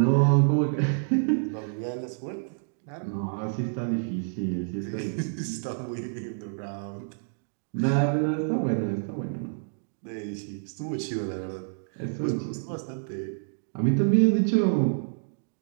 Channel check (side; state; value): left; silent; digital silence